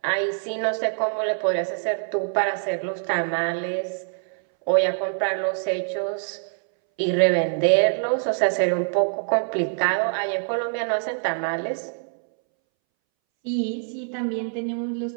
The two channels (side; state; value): left; silent; 62 dB below the other